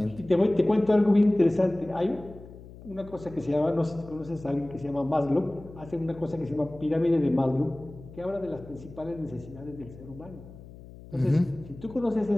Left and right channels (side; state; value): left; noise; hum, 18 dB below the sound